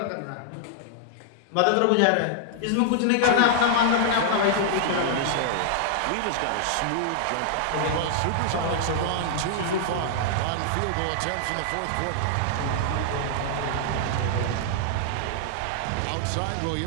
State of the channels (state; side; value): different; both; correlation -0.01